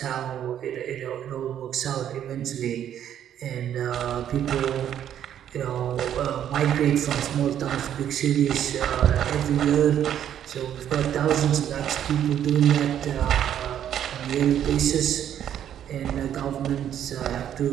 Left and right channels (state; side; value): quieter; left; 10.1 dB